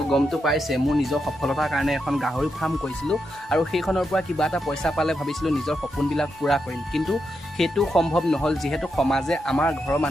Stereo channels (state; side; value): normal; both; correlation 0.84